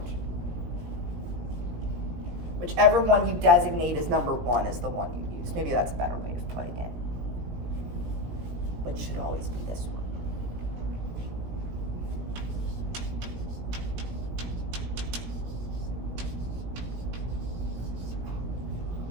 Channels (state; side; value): late; left; 18 ms